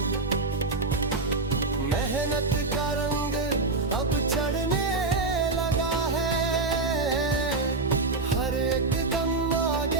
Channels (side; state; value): left; quieter; 3.5 dB